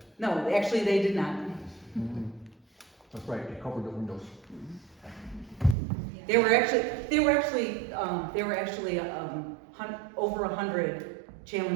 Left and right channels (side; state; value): left; drops out; at 5.8 s